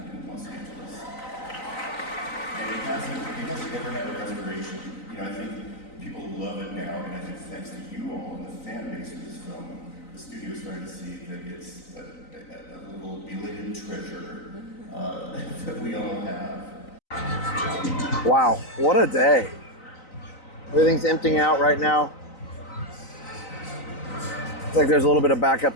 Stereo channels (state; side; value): late; right; 3.9 ms